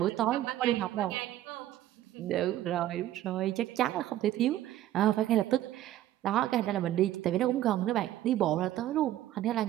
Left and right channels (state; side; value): quieter; left; 13.4 dB